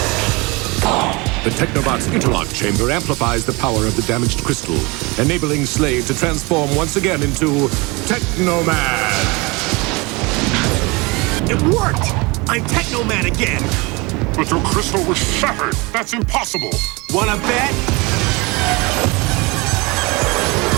The Technobot's interlock chamber amplifies the power of the damaged crystal, enabling Slade to transform once again into Teknoman. It worked! I'm Teknoman again! But your crystal was shattered. That's impossible. Wanna bet?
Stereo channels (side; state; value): left; quieter; 26.0 dB